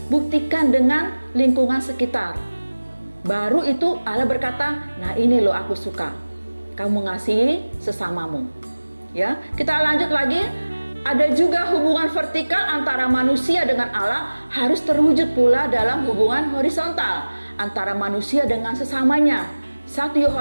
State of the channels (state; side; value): inverted; both; correlation -1.00